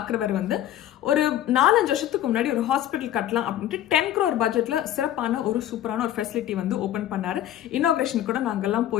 வந்து ஒரு 4-5 வருஷத்துக்கு முன்னாடி ஒரு ஹாஸ்பிட்டல் கட்டலாம் அப்படின்ட்டு 10 crore பட்ஜெட்ல சிறப்பான ஒரு சூப்பரான ஒரு ஃபெசிலிட்டி வந்து ஓப்பன் பண்ணாரு. இனாகிரேஷன் கூட நாங்கெல்லாம்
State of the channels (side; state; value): right; quieter; 12.2 dB